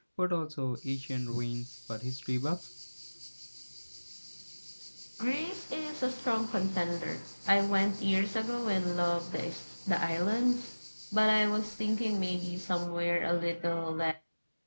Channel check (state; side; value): inverted; both; correlation -1.00